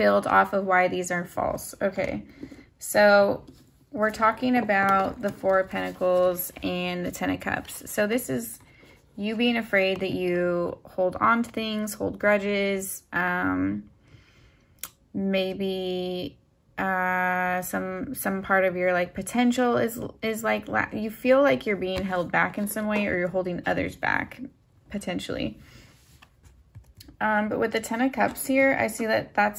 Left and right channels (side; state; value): both; identical; correlation 1.00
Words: off of why these are false. Okay, so we're talking about the 4 of Pentacles and the 10 of Cups. So this is you being afraid that you hold on to things, hold grudges, maybe some part of your like potential is like you feel like you're being held back in some way, or you're holding others back potentially. But with the 10 of Cups here, I see that